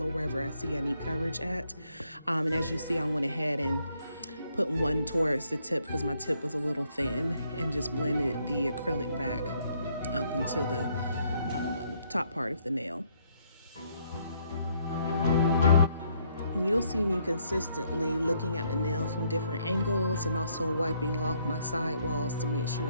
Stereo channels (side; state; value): both; inverted; correlation -0.71